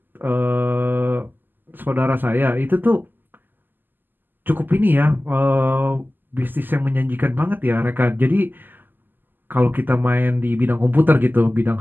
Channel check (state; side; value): late; left; 0.091 ms